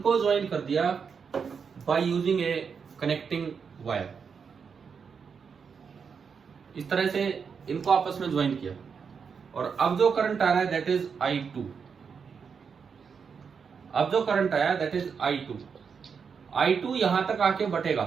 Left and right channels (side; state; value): left; quieter; 6.1 dB